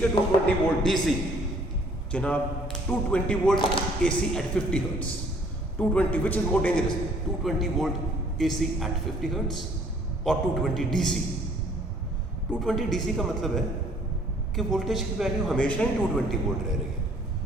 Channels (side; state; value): both; normal; correlation 0.59